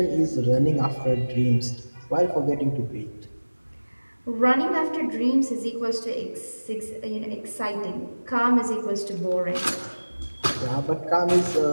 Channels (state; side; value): inverted; both; correlation -1.00